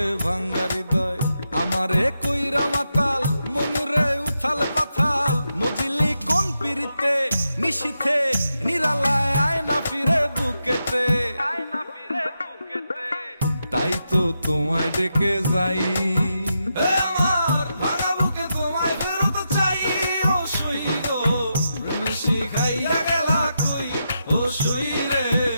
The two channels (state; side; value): inverted; both; correlation -0.85